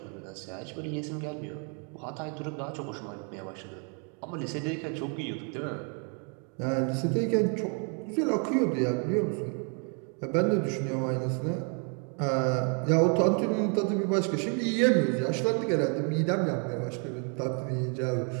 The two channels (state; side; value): quieter; left; 39.1 dB